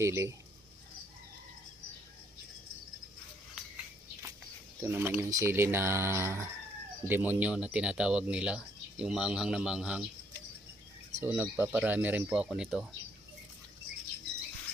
Ito naman yung sili na demonyo na tinatawag nila. Yung maanghang na maanghang. So nagpaparami rin po ako nito.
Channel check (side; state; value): both; normal; correlation 0.68